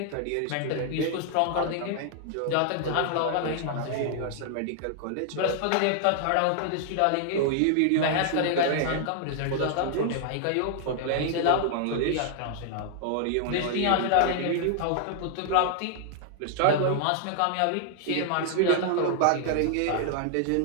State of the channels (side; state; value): both; different; correlation 0.00